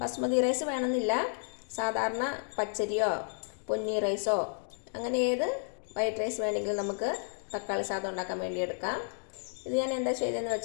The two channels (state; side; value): silent; right; digital silence